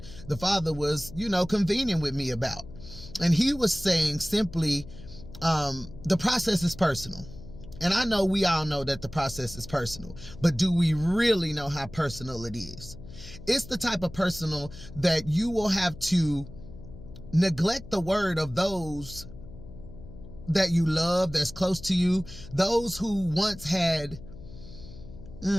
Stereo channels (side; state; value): left; noise; hum, 16 dB below the sound